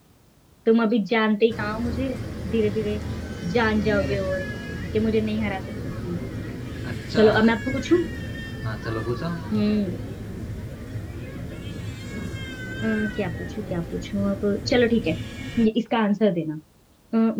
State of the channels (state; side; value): identical; both; correlation 1.00